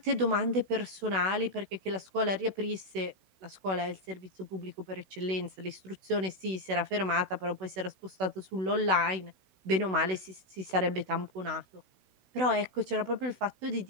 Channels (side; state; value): left; late; 16 ms